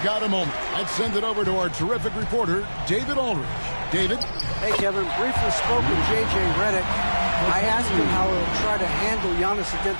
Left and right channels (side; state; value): both; inverted; correlation -1.00